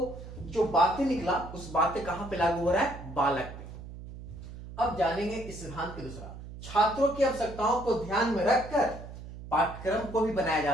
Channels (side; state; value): right; noise; hum, 13 dB below the sound